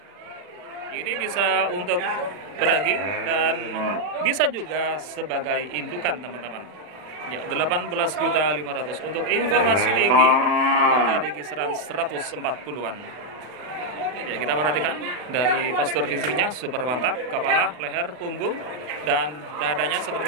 Ini bisa untuk pedaging dan bisa juga sebagai indukan teman-teman. Ya, 18.500.000. Untuk informasi tinggi ada di kisaran 140-an. Ya, kita perhatikan dari postur fisiknya super mantap, kepala, leher, punggung, dan dadanya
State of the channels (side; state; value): left; late; 40 ms